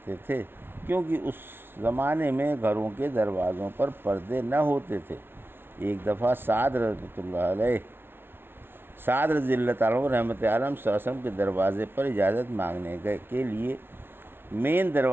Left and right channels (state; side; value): late; left; 0.11 ms